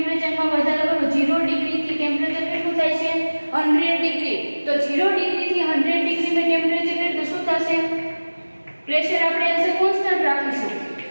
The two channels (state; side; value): inverted; both; correlation -1.00